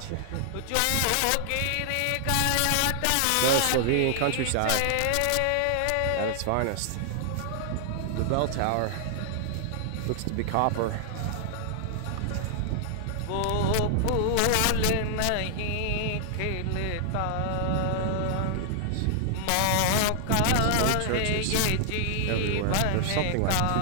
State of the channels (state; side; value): different; both; correlation 0.00